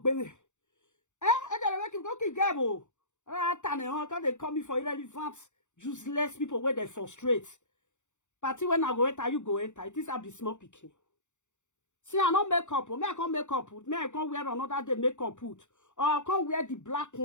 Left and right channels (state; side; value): late; right; 0.85 ms